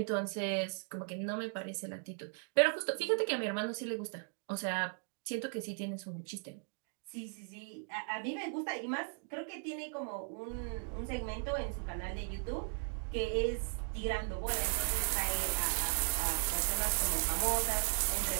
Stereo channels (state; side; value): silent; left; 53 dB below the other